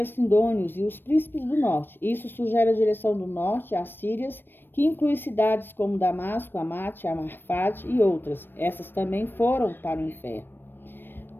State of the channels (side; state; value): right; late; 0.096 ms